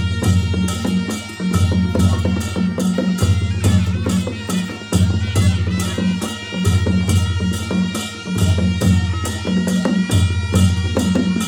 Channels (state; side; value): identical; both; correlation 1.00